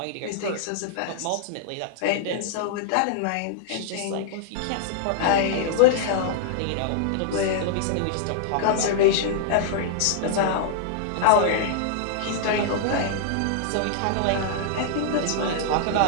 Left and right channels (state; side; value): different; both; correlation -0.01